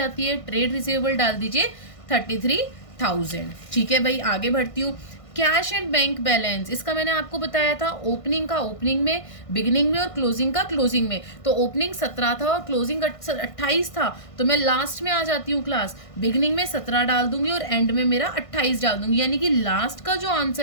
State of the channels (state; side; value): late; right; 1.5 ms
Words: है। ट्रेड रिसीवेबल डाल दीजिए 33,000। ठीक है भाई, आगे बढ़ती हूँ। कैश एंड बैंक बैलेंस, इसका मैंने आपको बताया था ओपनिंग का ओपनिंग में, बिगिनिंग में और क्लोजिंग का क्लोजिंग में। तो ओपनिंग 17 था और क्लोजिंग 28 था। तो मैं लास्ट में आ जाती हूँ क्लास, बिगिनिंग में 17 डाल दूंगी और एंड में मेरा 28 डाल दूंगी। यानी कि लास्ट का जो